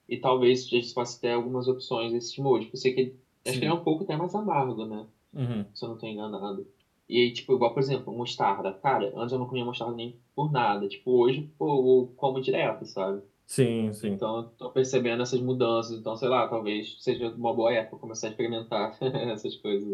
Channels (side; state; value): both; identical; correlation 1.00